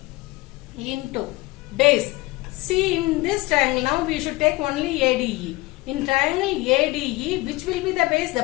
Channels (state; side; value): quieter; right; 21.2 dB